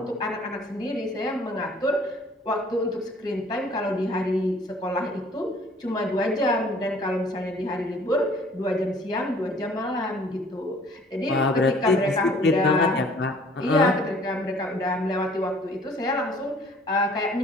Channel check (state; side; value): normal; both; correlation 0.55